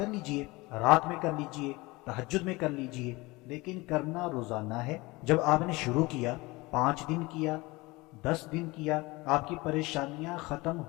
لیجئے، رات میں کر لیجئے، تہجد میں کر لیجئے، لیکن کرنا روزانہ ہے۔ جب آپ نے شروع کیا، 5 دن کیا، 10 دن کیا، آپ کی پریشانیاں ختم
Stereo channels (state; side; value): quieter; right; 22.6 dB